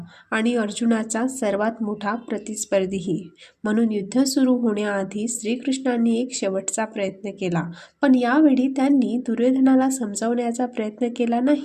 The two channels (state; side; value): identical; both; correlation 1.00